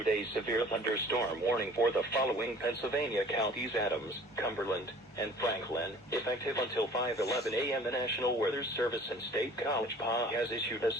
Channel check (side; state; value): both; normal; correlation 0.49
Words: a severe thunderstorm warning for the following Pennsylvania counties: Adams, Cumberland, and Franklin, effective until 5:11 a.m. The National Weather Service and State College PA has issued a